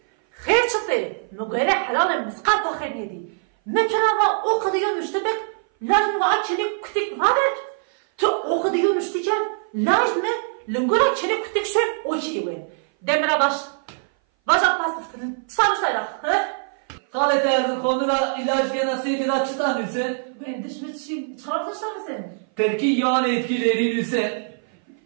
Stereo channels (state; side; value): silent; left; 58 dB below the other